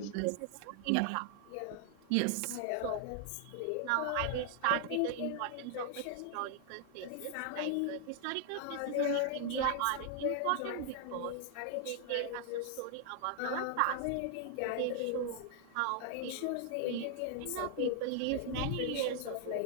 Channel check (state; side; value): different; both; correlation 0.00